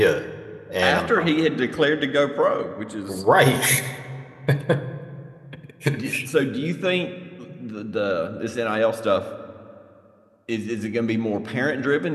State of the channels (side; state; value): both; identical; correlation 1.00